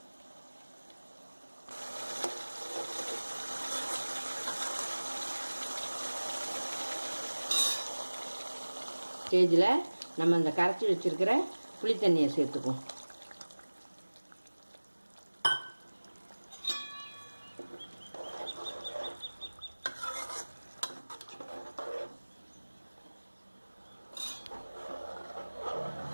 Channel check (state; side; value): inverted; both; correlation -1.00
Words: ஸ்டேஜில் நம்ம அந்த கரைச்சி வச்சுருக்கிற புளி தண்ணியை சேர்த்துக்குவோம்.